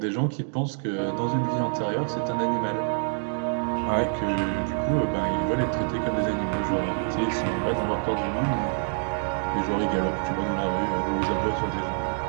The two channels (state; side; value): silent; left; 61 dB below the other